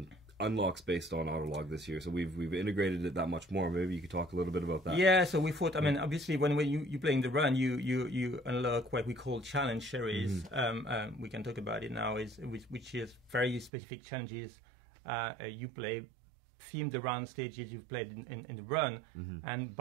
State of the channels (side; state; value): left; drops out; at 13.7 s